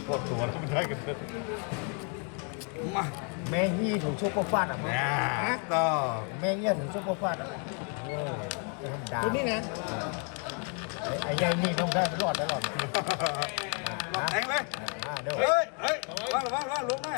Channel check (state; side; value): quieter; right; 39.4 dB